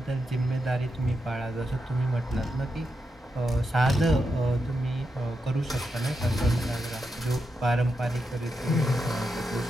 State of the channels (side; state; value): both; normal; correlation 0.86